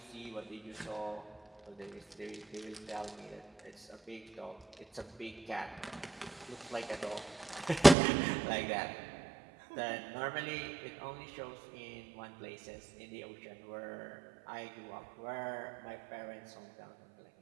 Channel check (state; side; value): drops out; left; at 8.0 s